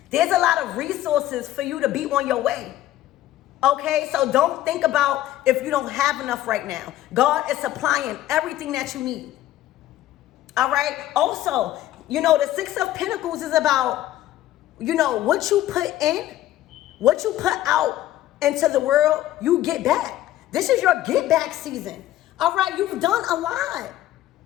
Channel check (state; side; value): quieter; right; 14.0 dB